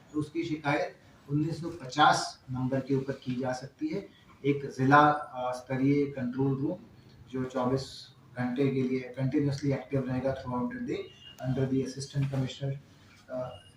तो उसकी शिकायत 1950 नंबर के ऊपर की जा सकती है। एक जिला स्तरीय कंट्रोल रूम जो 24 घंटे के लिए कंटिन्यूसली एक्टिव रहेगा throughout the day under the assistant commissioner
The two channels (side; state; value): both; identical; correlation 1.00